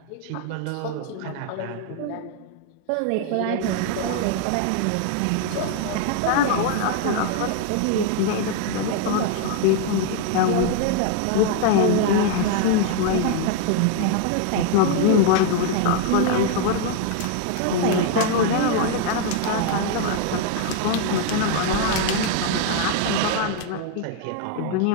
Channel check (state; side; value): different; both; correlation 0.00